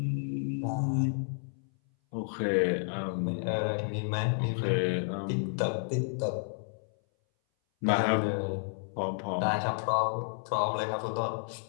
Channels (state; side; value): silent; right; 57 dB below the other